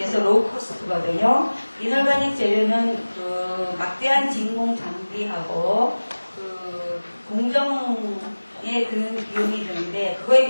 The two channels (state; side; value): inverted; both; correlation -1.00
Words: 로우 코스트거든요. 이놀가닉 재료는 그 막대한 진공 장비하고 그 공정에 드는 비용이 드는데 그거에